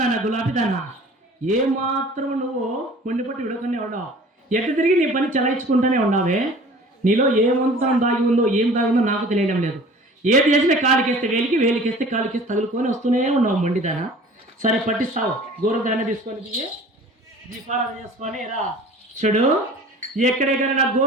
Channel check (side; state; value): both; normal; correlation 0.45